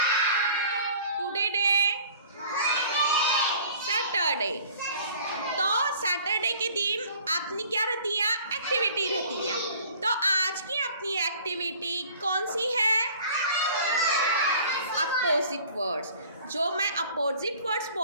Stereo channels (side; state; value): both; inverted; correlation -0.49